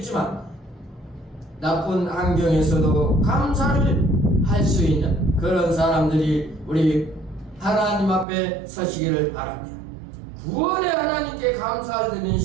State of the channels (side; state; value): left; drops out; at 8.2 s